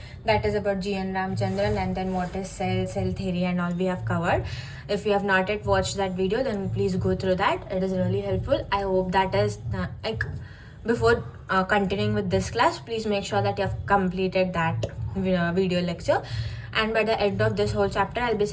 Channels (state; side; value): identical; both; correlation 1.00